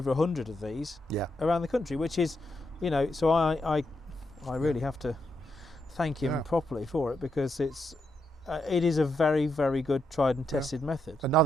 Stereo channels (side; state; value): both; normal; correlation 0.81